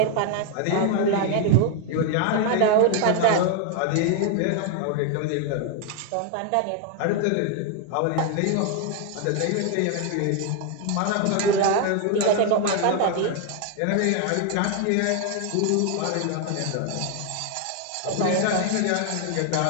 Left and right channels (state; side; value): different; both; correlation 0.00